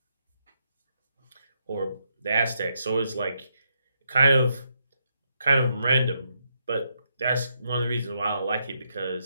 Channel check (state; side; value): inverted; both; correlation -0.79